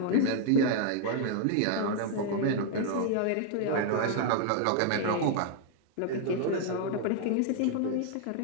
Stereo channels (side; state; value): both; different; correlation 0.00